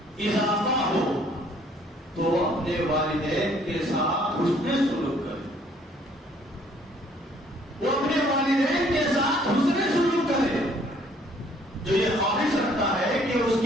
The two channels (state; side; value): normal; both; correlation 0.61